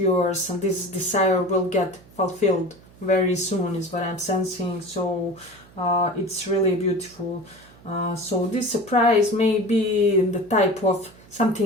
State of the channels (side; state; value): right; noise; hum, 25 dB below the sound